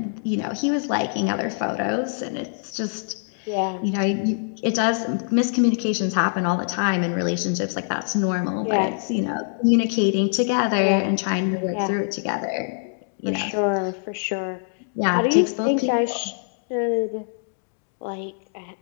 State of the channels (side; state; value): right; silent; digital silence